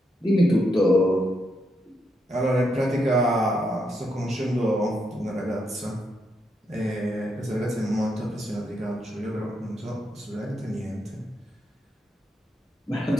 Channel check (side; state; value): both; normal; correlation 0.80